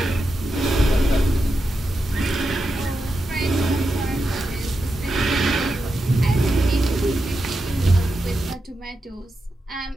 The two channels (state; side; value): normal; both; correlation 0.88